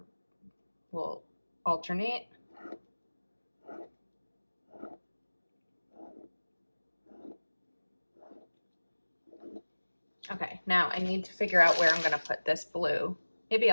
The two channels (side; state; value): both; inverted; correlation -1.00